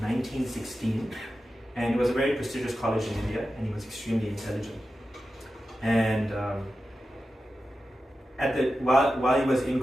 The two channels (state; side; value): normal; both; correlation 0.92